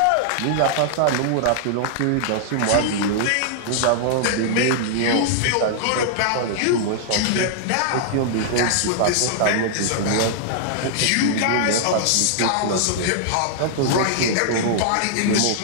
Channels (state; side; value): different; both; correlation -0.01